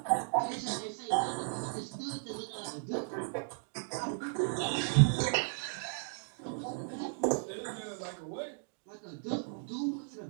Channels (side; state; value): left; silent; digital silence